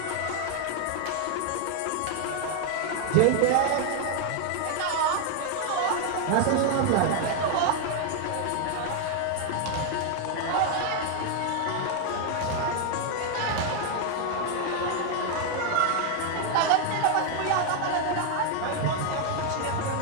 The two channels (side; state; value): both; different; correlation 0.00